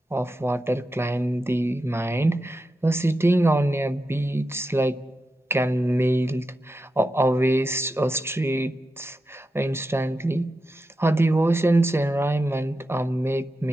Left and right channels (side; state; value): both; normal; correlation 0.89